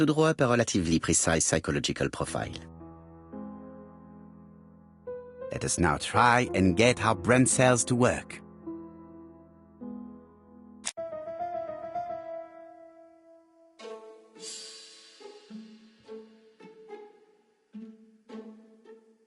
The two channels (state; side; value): identical; both; correlation 1.00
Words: draw up a relatively precise psychological profile. Let us now try and get our brain cells to work.